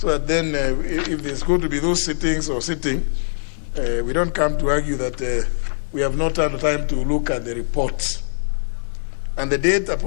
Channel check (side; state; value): right; silent; 57 dB below the other